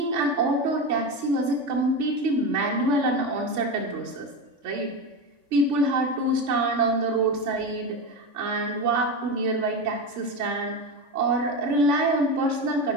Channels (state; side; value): late; left; 3.5 ms